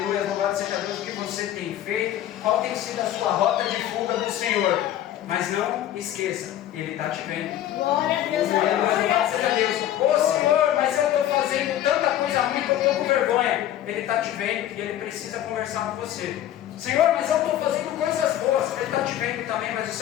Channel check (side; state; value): right; quieter; 12.2 dB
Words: louvado seja Deus, o que você tem feito, qual tem sido a sua rota de fuga do Senhor. Mas não esqueça, Ele está te vendo. Glória a Deus. Aleluia, louvado seja Deus. Ô Senhor, mas eu estou fazendo tanta coisa ruim que eu estou com vergonha. Ele está te vendo e Ele precisa conversar com você. Senhor, mas eu estou fazendo coisas boas. Ele está te vendo também, mas o